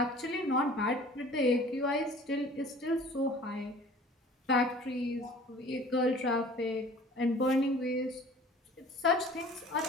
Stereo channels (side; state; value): both; normal; correlation 0.47